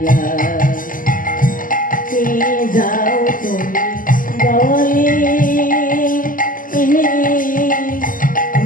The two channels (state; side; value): late; right; 0.40 ms